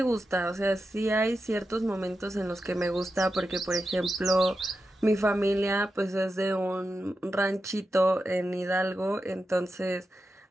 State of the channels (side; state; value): both; normal; correlation 0.90